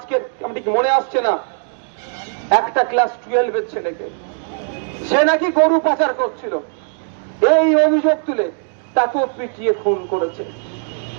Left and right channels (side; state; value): left; silent; 61 dB below the other